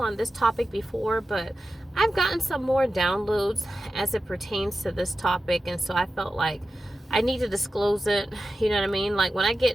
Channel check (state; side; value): normal; both; correlation 0.92